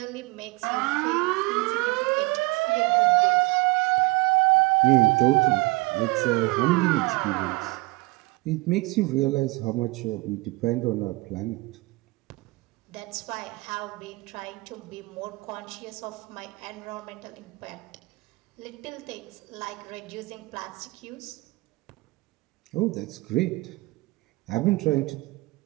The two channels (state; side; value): quieter; left; 23.7 dB